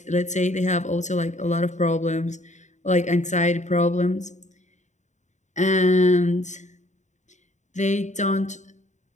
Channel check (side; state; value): right; late; 0.34 ms